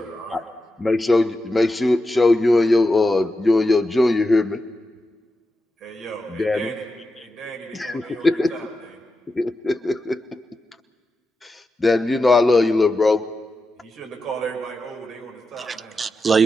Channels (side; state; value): both; normal; correlation 0.89